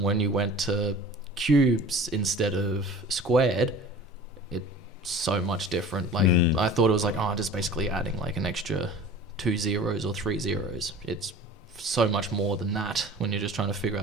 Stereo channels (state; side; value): normal; both; correlation 0.42